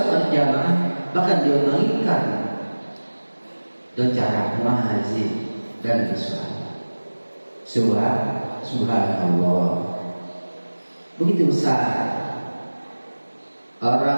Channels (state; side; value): inverted; both; correlation -1.00